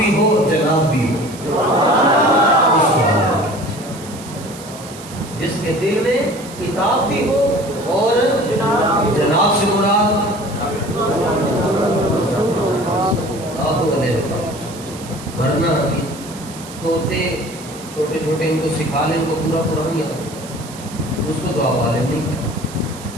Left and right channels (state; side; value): noise; right; hiss, 16 dB below the sound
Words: ہو اور جناب بھی ہو. جس کے دل میں کتاب بھی ہو اور جناب سے مراد ورنہ طوطے چھوٹے چھوٹے ان کو سکھا لیں، ان کو پورا قرآن یاد ہے، اس کو تو آپ عالم نہیں کہتے.